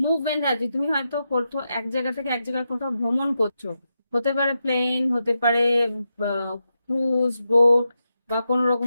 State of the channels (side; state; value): both; inverted; correlation -0.87